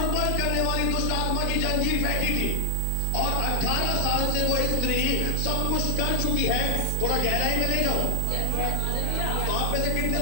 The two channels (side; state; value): both; different; correlation 0.00